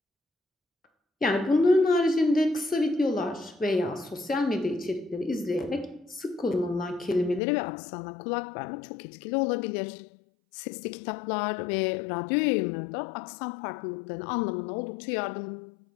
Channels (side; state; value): right; drops out; at 7.4 s